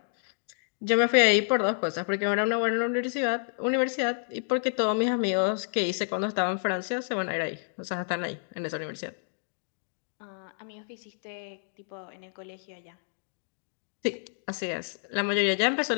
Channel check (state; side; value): silent; right; digital silence